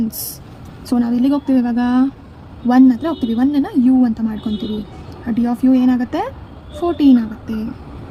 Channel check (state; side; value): identical; both; correlation 1.00